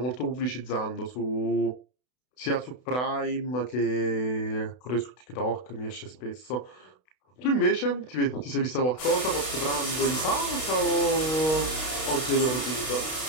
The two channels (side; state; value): right; late; 32 ms